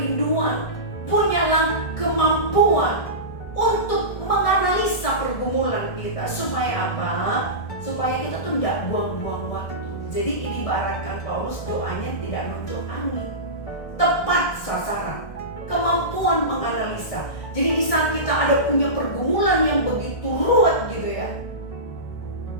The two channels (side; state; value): right; late; 1.6 ms